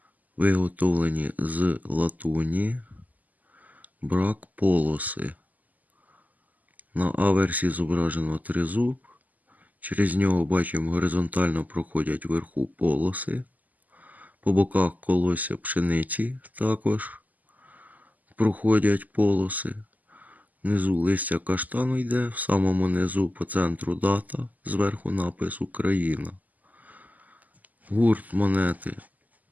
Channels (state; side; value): late; left; 0.080 ms